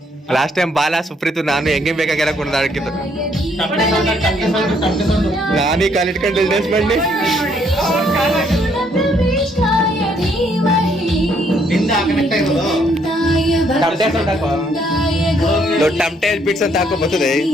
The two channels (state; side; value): normal; both; correlation 0.69